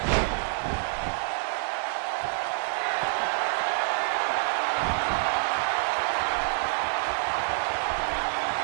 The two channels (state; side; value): silent; left; 60 dB below the other